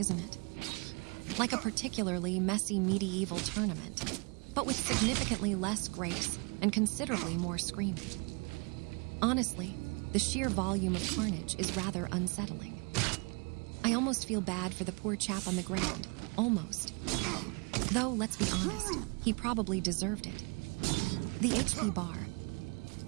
it? Like a particularly messy medieval tournament, but with significantly less grace and considerably more screaming. Honestly, the sheer volume of carnage is rather unsettling. I almost feel bad for the poor chap on the ground. Almost. Though, let's be honest, he probably deserved it. The HP bar.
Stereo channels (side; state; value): left; quieter; 32.6 dB